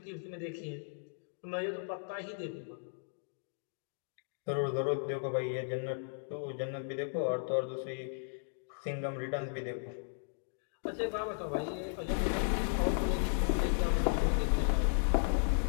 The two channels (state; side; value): silent; right; digital silence